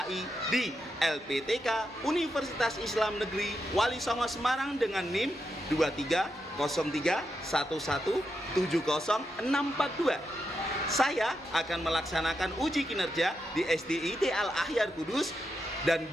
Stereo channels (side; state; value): both; normal; correlation 0.85